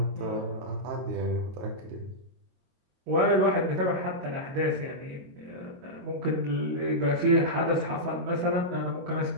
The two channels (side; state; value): left; late; 22 ms